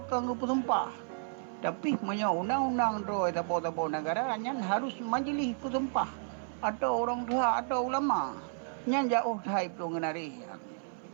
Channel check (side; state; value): left; silent; 56 dB below the other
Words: kang musumpah tapi menyo undang-undang roi tabo-tabo negara nyan harus majelis kusumpah atau orang tua atau ulama nyan jauh thai plung nari